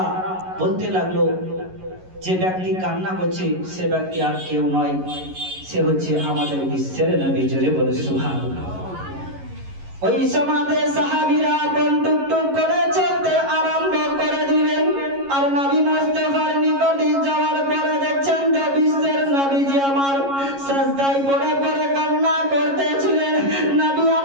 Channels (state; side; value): late; left; 11 ms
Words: বলতে লাগলো, যে ব্যক্তি কান্না করছে সে ব্যক্তি আর কেউ নয়, সে হচ্ছে আমাদের বিশ্বের নবী। জোরে বলুন সুবহানাল্লাহ। ওই সমাজে সাহাবীরা টুক টুক করে চলতে আরম্ভ করে দিলেন। আর নবী মুস্তাফার নিকটে যাওয়ার পরে দেখছেন যে বিশ্বের নবীজি আমার সিজদায় পড়ে পড়ে কান্না করতেছিলেন। নবী